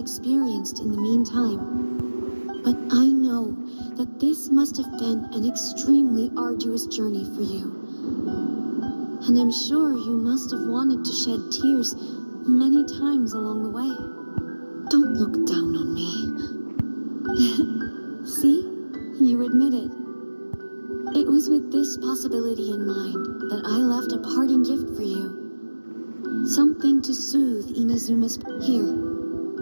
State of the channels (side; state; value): both; inverted; correlation -1.00